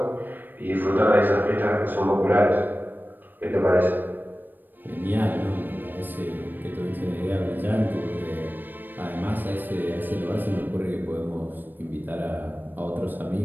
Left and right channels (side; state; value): left; late; 0.091 ms